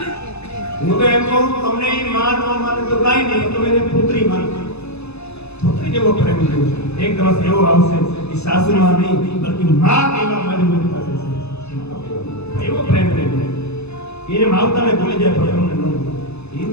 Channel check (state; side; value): late; right; 0.80 ms